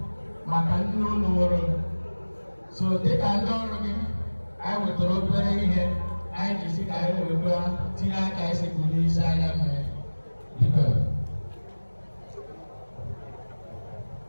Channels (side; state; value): both; inverted; correlation -1.00